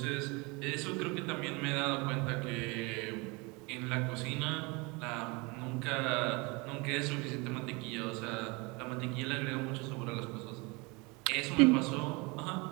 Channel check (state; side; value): quieter; left; 27.2 dB